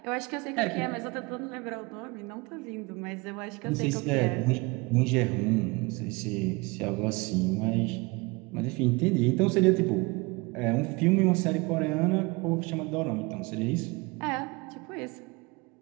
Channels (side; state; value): left; quieter; 25.7 dB